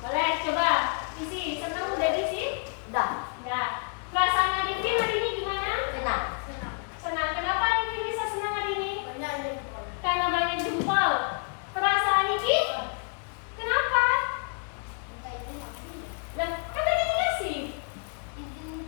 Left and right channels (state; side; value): quieter; right; 39.5 dB